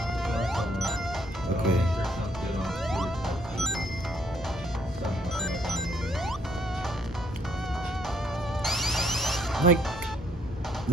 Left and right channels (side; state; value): both; normal; correlation 0.68